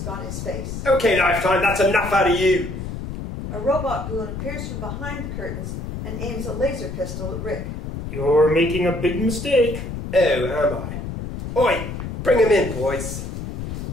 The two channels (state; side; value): noise; left; rumble, 7 dB below the sound